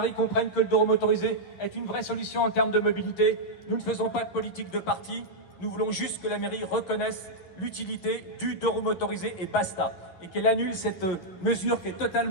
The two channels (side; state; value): right; late; 11 ms